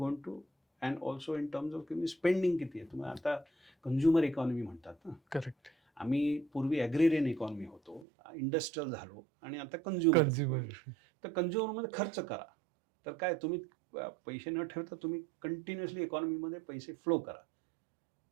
gone to, and also in terms of तुम्ही स्पेंडिंग किती आहे. तुम्ही आता कंझ्युमर इकॉनॉमी म्हणतात ना. करेक्ट. आम्ही पूर्वी ॲग्रेरियन इकॉनॉमी होतो, इंडस्ट्रियल झालो, आणि आता कंझ्युमर. तर कंझ्युमरमध्ये खर्च करा. तर काय, तुम्ही पैसे न ठेवता तुम्ही कंटिन्युअसली इकॉनॉमीमध्ये पैसे फ्लो करा.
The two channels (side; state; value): left; drops out; at 8.1 s